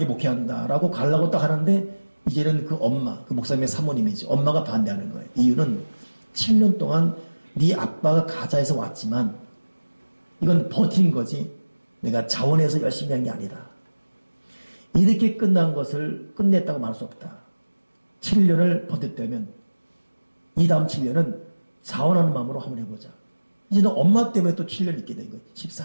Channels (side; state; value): both; inverted; correlation -1.00